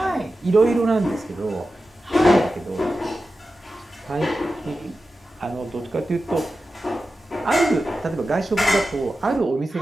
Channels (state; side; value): normal; both; correlation 0.93